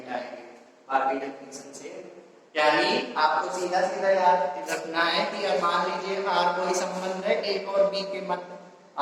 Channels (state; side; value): identical; both; correlation 1.00